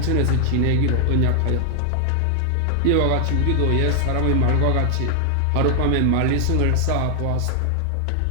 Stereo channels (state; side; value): different; both; correlation 0.00